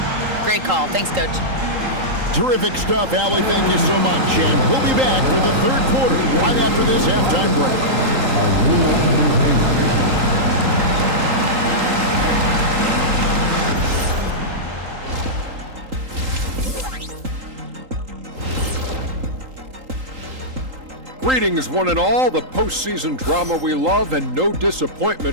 Great call. Thanks, Coach. Terrific stuff, Allie. Thank you so much. And we'll be back for the third quarter right after this halftime break. Greetings, one and all. The postseason drama we love, and no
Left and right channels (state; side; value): late; left; 3.8 ms